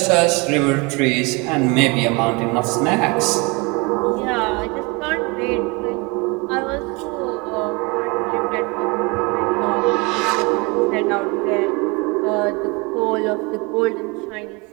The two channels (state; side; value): quieter; left; 28.0 dB